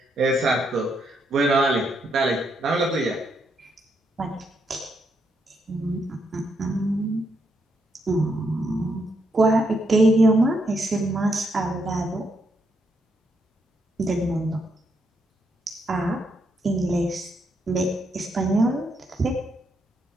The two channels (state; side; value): normal; both; correlation 0.78